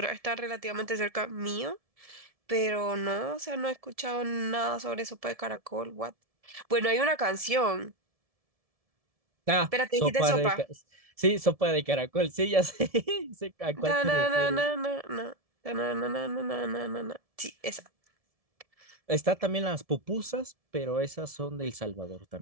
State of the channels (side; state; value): left; late; 1.7 ms